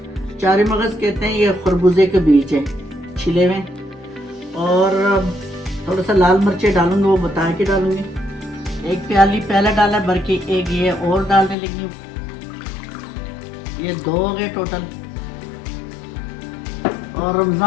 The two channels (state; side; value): drops out; right; at 11.6 s